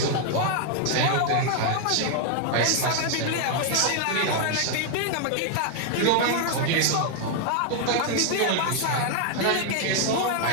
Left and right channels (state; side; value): different; both; correlation 0.00